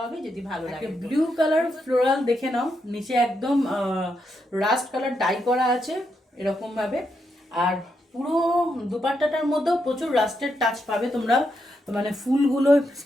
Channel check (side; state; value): both; normal; correlation 0.82